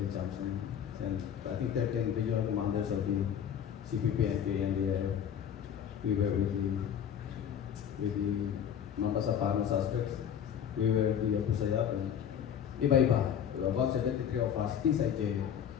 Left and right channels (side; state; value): right; quieter; 8.9 dB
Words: Chamson, and I think 13 regional commanders of the CPP and KNDF. We were with the Mampasapano suspects. We were with the Abu Sayyaf and iba-iba. About 73 of us inside jail.